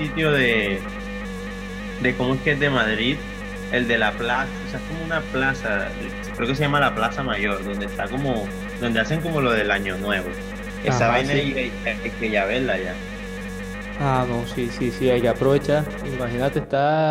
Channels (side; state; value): both; identical; correlation 1.00